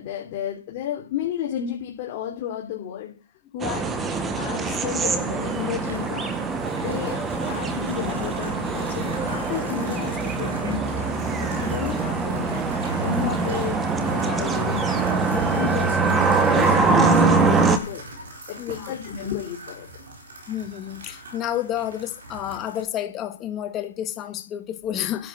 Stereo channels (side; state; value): both; normal; correlation 0.33